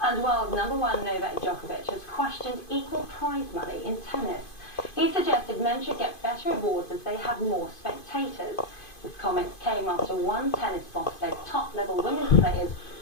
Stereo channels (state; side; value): late; right; 2.5 ms